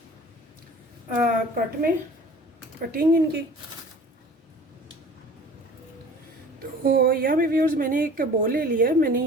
कटिंग इनकी। तो यहाँ पे व्यूअर्स मैंने एक बोल ले लिया है। मैंने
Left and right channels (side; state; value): both; normal; correlation 0.45